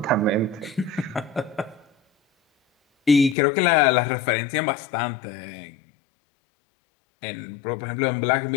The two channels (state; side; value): drops out; right; at 3.4 s